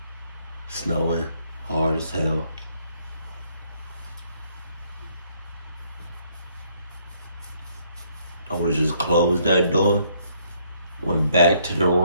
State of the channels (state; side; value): inverted; both; correlation -0.68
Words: Snowing hard as hell. I would have just closed that door, went back to the